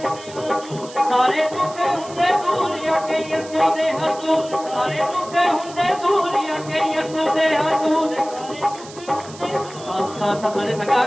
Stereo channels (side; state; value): right; noise; hiss, 18 dB below the sound